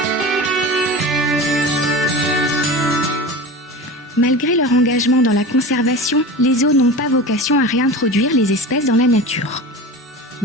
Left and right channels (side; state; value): both; normal; correlation 0.31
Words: Malgré leur engagement dans la conservation, les zoos n'ont pas vocation à réintroduire les espèces dans la nature.